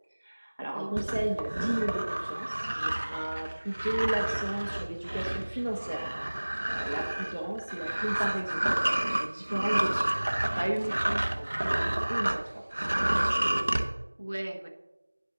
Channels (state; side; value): inverted; both; correlation -1.00